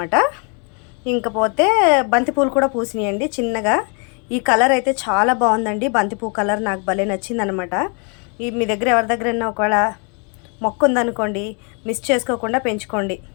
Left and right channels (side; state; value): right; quieter; 36.6 dB